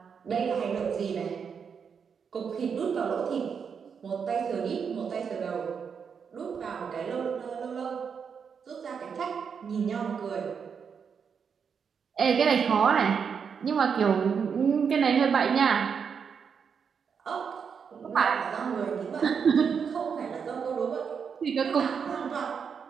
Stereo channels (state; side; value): quieter; left; 6.5 dB